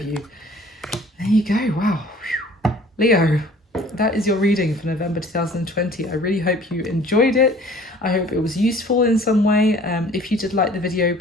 you. There you go. Wow. Leo, that is your reading for November 2020. I really hope you enjoyed it. I hope it was useful in some way. If you did like the video,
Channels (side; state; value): both; normal; correlation 0.51